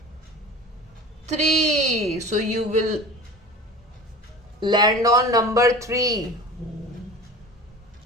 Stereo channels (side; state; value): both; normal; correlation 0.37